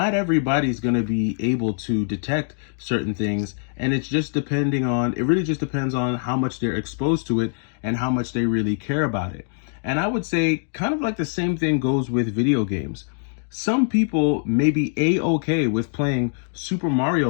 everybody's going to be able to detect certain things, and it really just depends on how much they're exposed to it and how much they really care about it. And I would say kind of like the same thing goes with video games. Some people may be a-okay with playing Super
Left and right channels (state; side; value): silent; right; 63 dB below the other